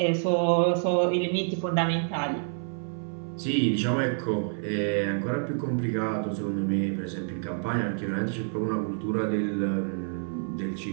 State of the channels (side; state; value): left; silent; 58 dB below the other